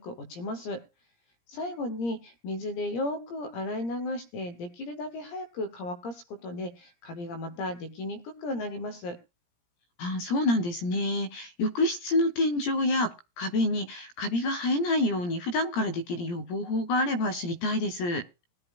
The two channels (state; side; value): late; right; 17 ms